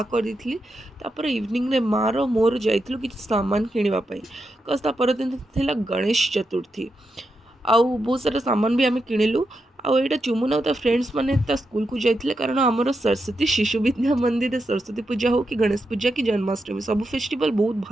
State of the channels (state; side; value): normal; both; correlation 0.85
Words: करदी तापर इवनिंग रे मार मोर जाइलु कि सामान किणापी कज परदिन थिला गणेश चतुर्थी आउ बहुत सारा सामान भी आम किणिलु आईटा चुमुन आ फ्रेंड्स मैंने स्कूल को जाते कारण आमर सरस्वती शिशु विद्या मंदिर सरस्वती पूजा हो कि गणेश पूजा कि जन्माष्टमी सब फेस्टिवल बहुत